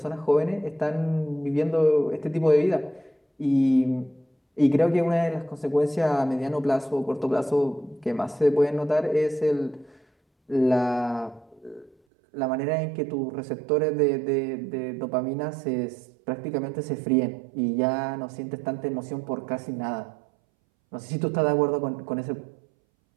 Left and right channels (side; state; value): left; drops out; at 12.0 s